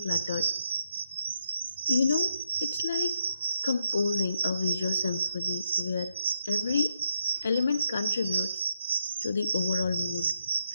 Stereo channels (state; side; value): inverted; both; correlation -0.79